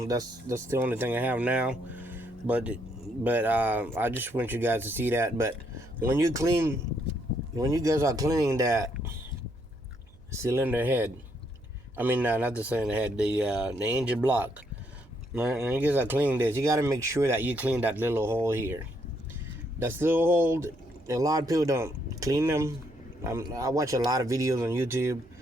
that's the only thing I have now. But I just want you guys to see that. But when you guys are cleaning that cylinder head, I mean not the cylinder head, the engine block. When you guys are cleaning this, you got to make sure that you clean that little hole here. That little hole, a lot of people don't clean them. I watch a lot of videos on YouTube.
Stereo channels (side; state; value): right; noise; hum, 25 dB below the sound